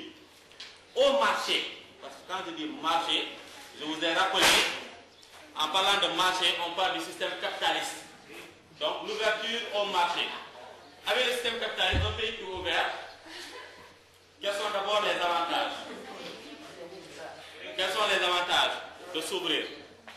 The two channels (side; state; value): both; identical; correlation 1.00